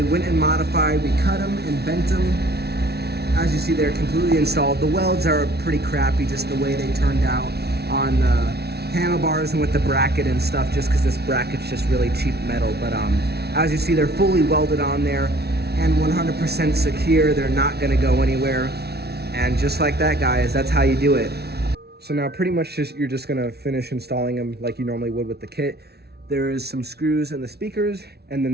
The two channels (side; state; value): left; late; 0.47 ms